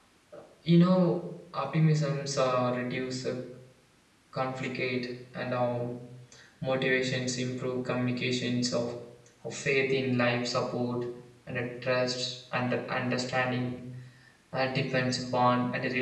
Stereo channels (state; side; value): identical; both; correlation 1.00